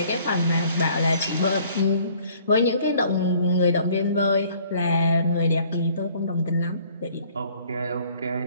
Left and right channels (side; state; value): both; inverted; correlation -0.57